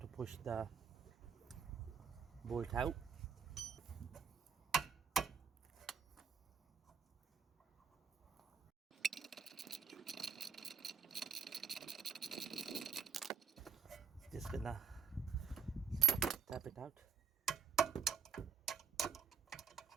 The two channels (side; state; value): left; quieter; 6.7 dB